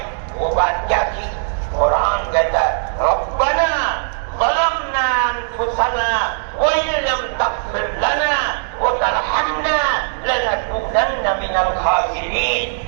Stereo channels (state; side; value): silent; left; digital silence